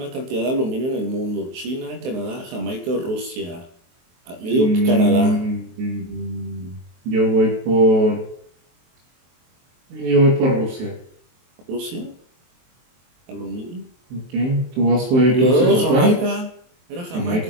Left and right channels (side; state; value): left; late; 23 ms